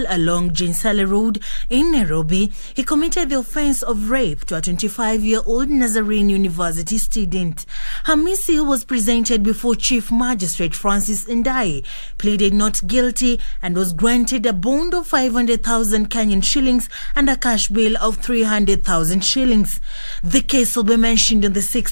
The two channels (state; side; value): inverted; both; correlation -1.00